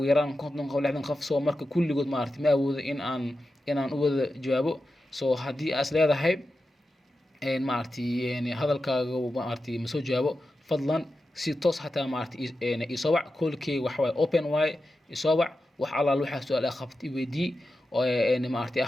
yaraan 50 qof soo marka kulligood maaragtay ma awoodo in aan u wada jawaabo so haddii aad leedahay maaragtay hadalkaaga maaragtay ma soo jawaabo fadlan si toos hataa maaragtay isoo wac callkay waxa waaye open waaye isoo wac wax alla waxa su'aal ah qabti weydii oo maaragtay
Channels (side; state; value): both; normal; correlation 0.91